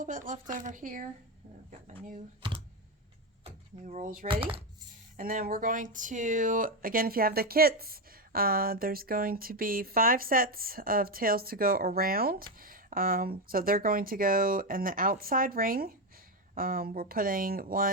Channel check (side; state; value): both; normal; correlation 0.10